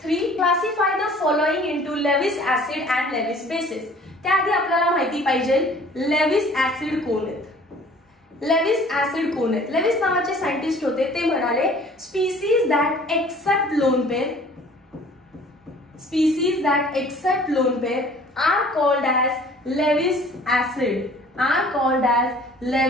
3. Classify the following into Lewis acid and Lewis bases. त्याआधी आपल्याला माहिती पाहिजे लेविस ऍसिड कोण आहेत. लेविस ऍसिड कोण आहेत. लेविस नावाचे सायंटिस्ट होते, ते म्हणाले species that accept lone pair, species that accept lone pair are called as Lewis acid, are called as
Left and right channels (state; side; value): normal; both; correlation 0.51